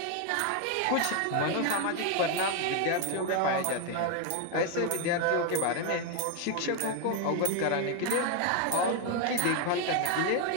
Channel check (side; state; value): both; different; correlation 0.01